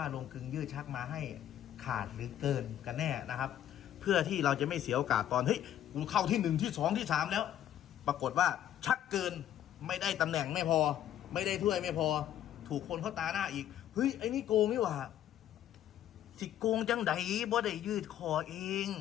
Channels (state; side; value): quieter; right; 11.3 dB